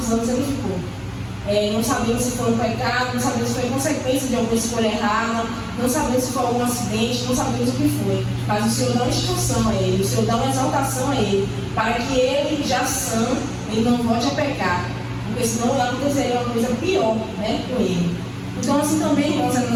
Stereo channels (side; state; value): both; identical; correlation 1.00